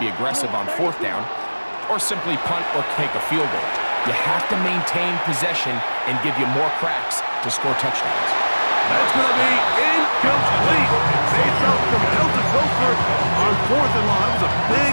aggressive on 4th down or simply punt or take a field goal. You have to maintain possession and give you more cracks to score touchdowns. That's going to be incomplete. They felt compelled to go for it on 4th and long. It was a big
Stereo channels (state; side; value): inverted; both; correlation -1.00